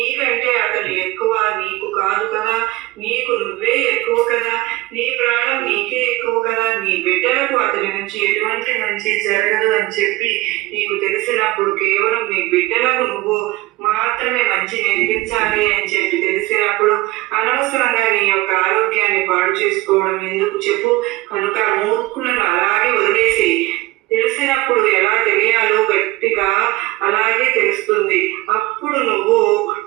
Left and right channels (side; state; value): left; quieter; 19.7 dB